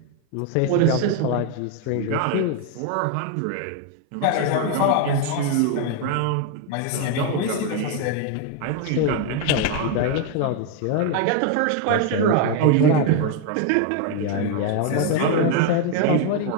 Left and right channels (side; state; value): both; different; correlation 0.01